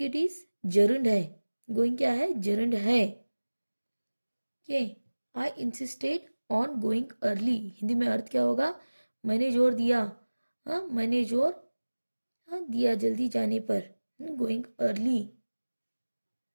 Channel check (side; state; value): both; inverted; correlation -1.00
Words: इट इज जर्नड है, गोइंग क्या है, जर्नड है। के आई insisted on going early, Hindi में अर्थ क्या होगा, मैंने जोर दिया, हाँ मैंने जोर, हाँ दिया जल्दी जाने पर, गोइंग अर्ली,